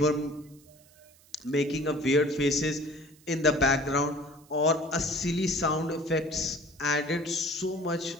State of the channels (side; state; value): right; noise; hiss, 28 dB below the sound